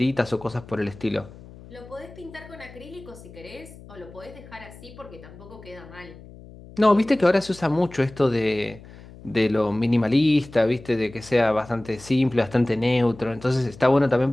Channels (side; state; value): left; noise; hum, 19 dB below the sound